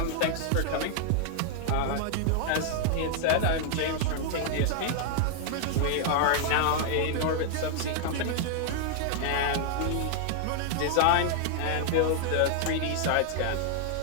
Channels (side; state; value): both; different; correlation 0.00